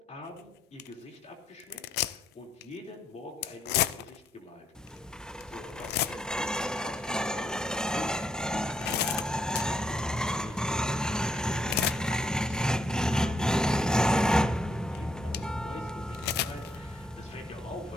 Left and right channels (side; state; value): both; normal; correlation 0.74